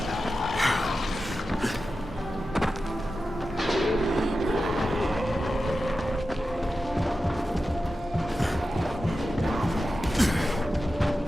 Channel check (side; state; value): both; normal; correlation 0.92